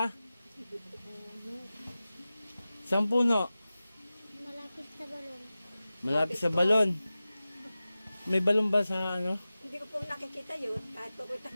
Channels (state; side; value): inverted; both; correlation -0.95